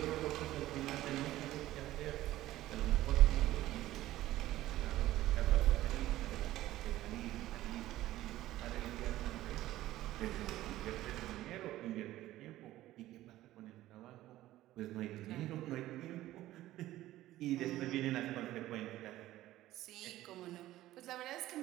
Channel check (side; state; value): left; quieter; 15.2 dB